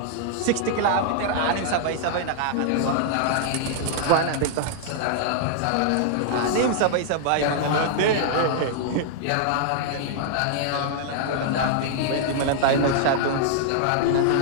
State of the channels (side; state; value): both; different; correlation -0.01